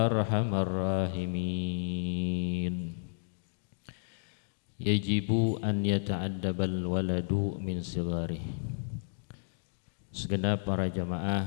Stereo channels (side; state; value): right; silent; digital silence